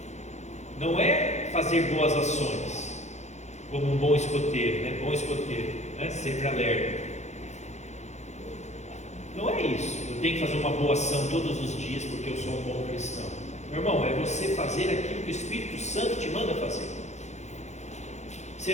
não é fazer boas ações, como um bom escoteiro, né? Bom escoteiro, né? Sempre alerta. Não é isso, eu tenho que fazer uma boa ação todos os dias porque eu sou um bom cristão. Meu irmão, é você fazer aquilo que o Espírito Santo te manda fazer.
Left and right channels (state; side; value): late; right; 0.33 ms